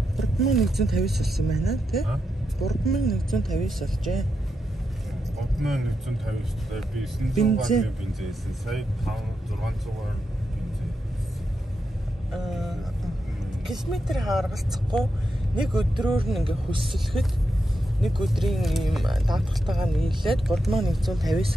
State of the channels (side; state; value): both; normal; correlation 0.86